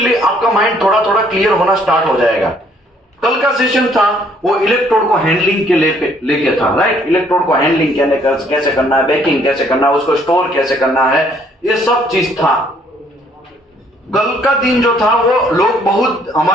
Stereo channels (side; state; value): both; normal; correlation 0.64